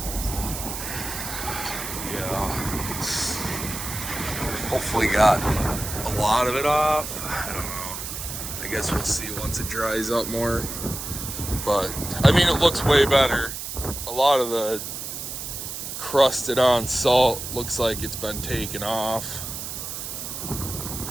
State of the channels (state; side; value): noise; right; hiss, 7 dB below the sound